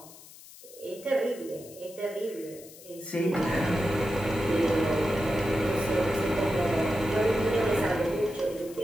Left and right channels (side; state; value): left; noise; hiss, 19 dB below the sound